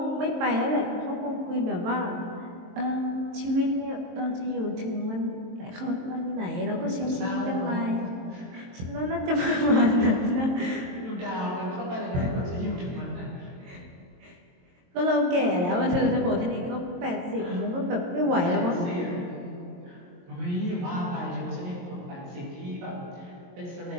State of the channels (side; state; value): left; late; 22 ms